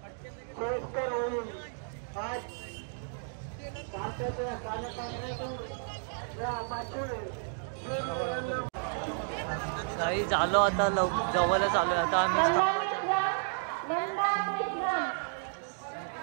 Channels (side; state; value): left; silent; digital silence